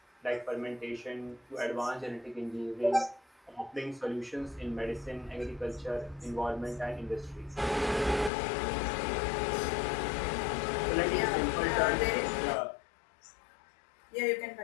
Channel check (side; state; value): right; drops out; at 8.3 s